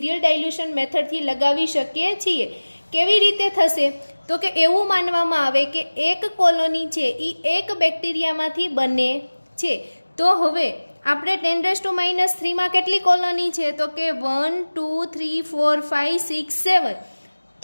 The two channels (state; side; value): inverted; both; correlation -1.00